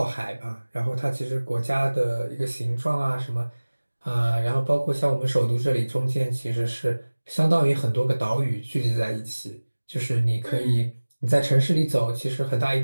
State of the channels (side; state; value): both; inverted; correlation -1.00